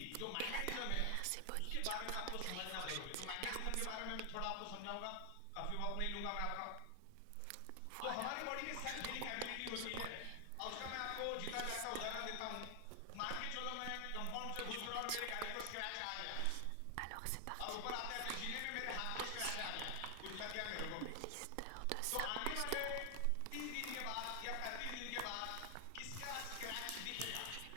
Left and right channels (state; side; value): different; both; correlation 0.00